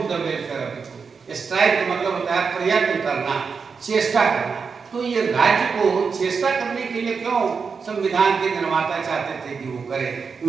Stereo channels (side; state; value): left; quieter; 5.4 dB